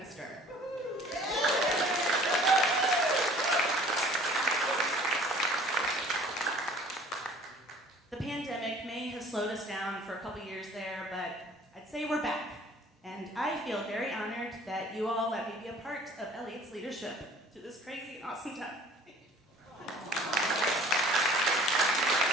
The pandemic may have slowed us down for a couple years there, but I'd say we're back. And I feel very honored that you all let me be a part of Eliot's leadership through this crazy, awesome time.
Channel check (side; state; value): both; normal; correlation 0.50